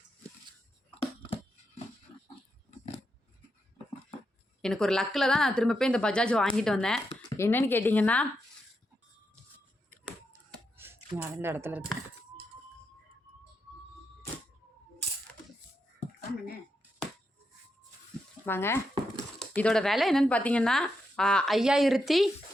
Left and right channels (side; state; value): both; normal; correlation 0.84